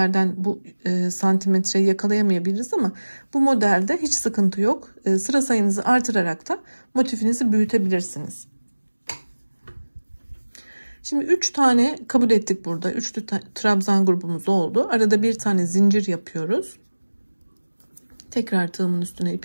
bu santimetreyi yakalayamayabiliriz ama bu modelde hiç sıkıntı yok. Sıra sayınızı artırarak da motifinizi büyütebilirsiniz. Şimdi 3 tane kabul ettik burada. 3 trabzan grubumuz oldu. Arada bir tane zincir yapıyoruz. Tekrar tığımın üstüne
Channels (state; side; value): inverted; both; correlation -1.00